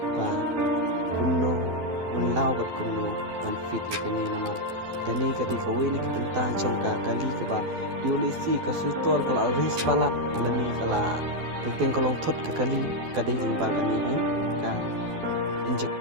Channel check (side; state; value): left; late; 12 ms